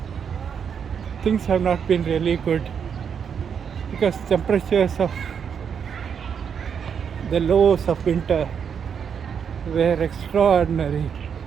things have not been really good, because temperatures of the lows of winter were extraordinary.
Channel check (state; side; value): quieter; left; 7.3 dB